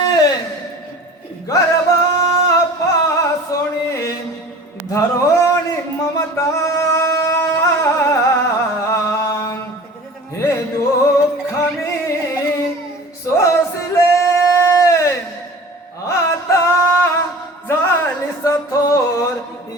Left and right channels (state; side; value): normal; both; correlation 0.41